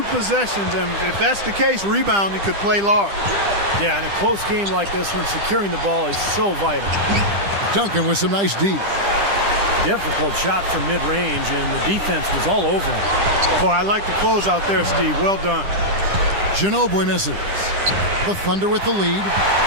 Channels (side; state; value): left; late; 10 ms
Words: possessions, and if that's the case, rebounding could play large. Yeah, in a close game like this one, securing the ball is so vital. Duncan with some nice D. Difficult shot from mid-range, and the defense was all over him. Boy, I like the close out there, Steve. Well done. Ginobili misses. The Thunder with the lead.